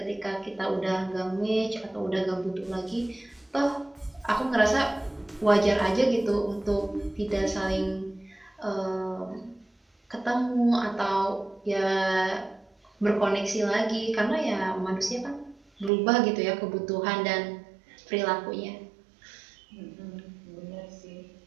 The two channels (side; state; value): left; drops out; at 15.9 s